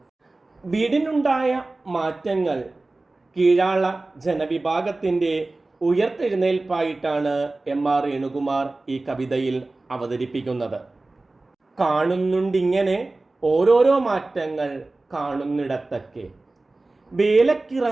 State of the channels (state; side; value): quieter; left; 3.1 dB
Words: വീടിനുണ്ടായ മാറ്റങ്ങൾ കീഴാള ജനവിഭാഗത്തിൻ്റെ ഉയർത്തെഴുന്നേൽപ്പായിട്ടാണ് എം.ആർ. വേണുകുമാർ ഈ കവിതയിൽ അവതരിപ്പിക്കുന്നത്. കാണുന്നുണ്ടിങ്ങനെ ഓരോരോ മാറ്റങ്ങൾ കാണുന്നിടത്തൊക്കെ,